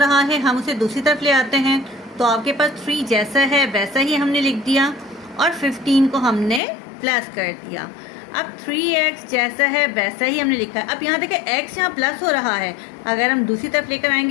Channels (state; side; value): drops out; right; at 6.6 s